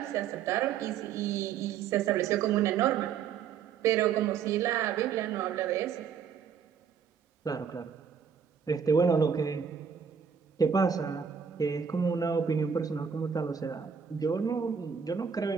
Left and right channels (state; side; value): quieter; left; 7.0 dB